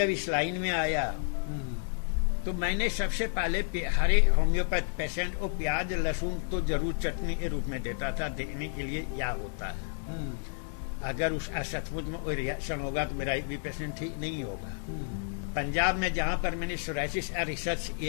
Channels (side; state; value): right; silent; digital silence